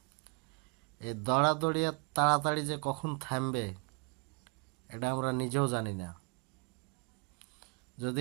এই দৌড়াদৌড়ি আর তাড়াতাড়ি যে কখন থামবে এটা আমরা নিজেও জানি না। যদি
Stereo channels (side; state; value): left; quieter; 33.2 dB